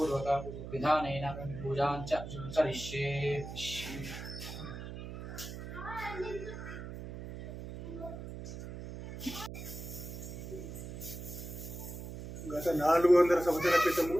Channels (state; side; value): noise; right; hum, 9 dB below the sound